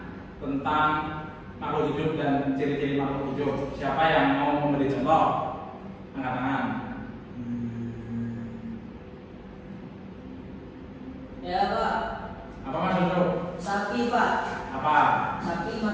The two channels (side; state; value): both; identical; correlation 1.00